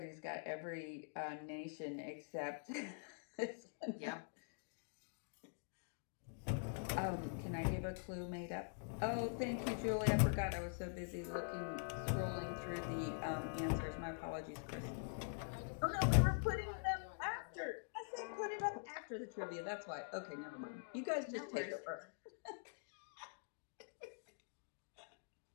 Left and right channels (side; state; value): right; silent; digital silence